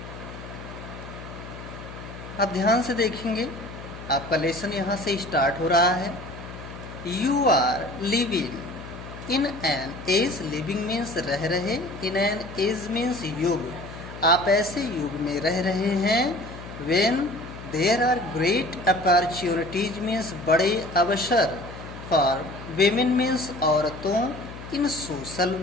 आप ध्यान से देखेंगे, आपका लेसन यहाँ से स्टार्ट हो रहा है। You are living in an age, living means रह रहे, इन एन एज मीन्स युग, आप ऐसे युग में रह रहे हैं। When there are great opportunities means बड़े अवसर, फॉर वेमेन मीन्स औरतों, इन सोशल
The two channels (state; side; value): noise; left; hum, 13 dB below the sound